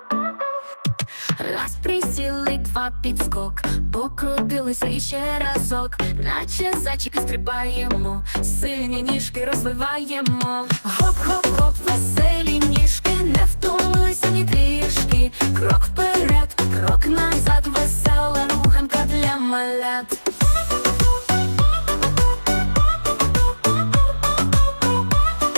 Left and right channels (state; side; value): inverted; both; correlation -1.00